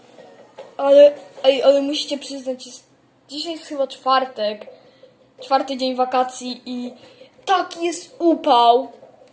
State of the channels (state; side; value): identical; both; correlation 1.00